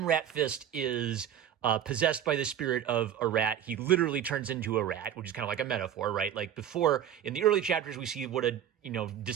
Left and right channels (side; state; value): left; quieter; 9.8 dB